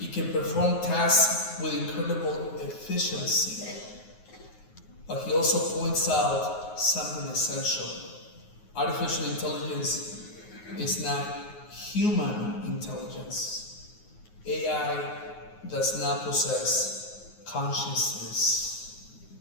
can perform tasks with incredible efficiency. But he also points out something essential. Artificial intelligence is not human intelligence. AI does not possess consciousness,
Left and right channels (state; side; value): late; right; 9.5 ms